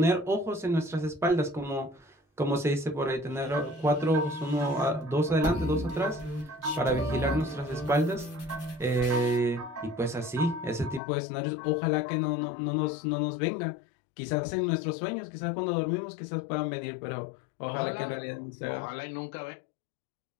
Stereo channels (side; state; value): right; drops out; at 11.0 s